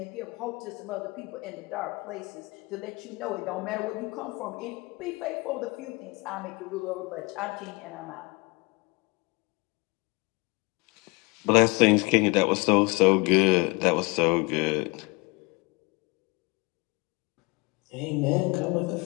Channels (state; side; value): quieter; right; 27.1 dB